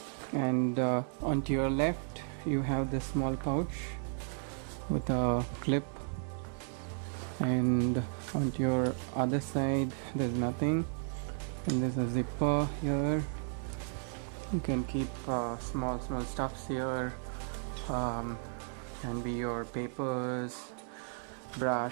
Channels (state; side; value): silent; left; 55 dB below the other